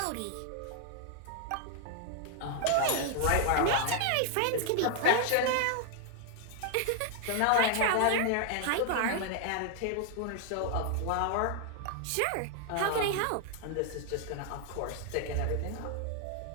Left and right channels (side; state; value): both; different; correlation 0.00